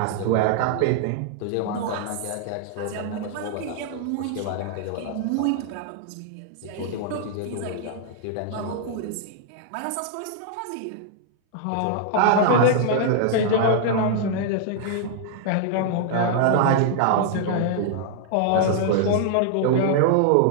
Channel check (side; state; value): both; different; correlation -0.01